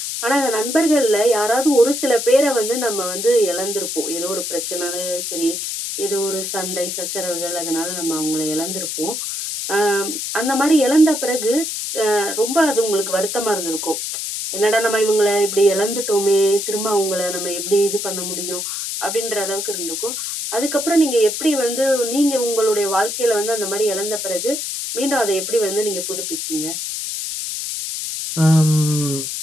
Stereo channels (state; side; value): noise; left; hiss, 4 dB below the sound